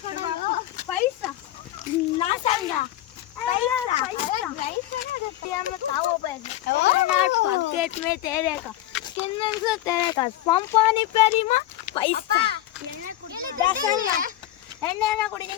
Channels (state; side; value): quieter; right; 14.0 dB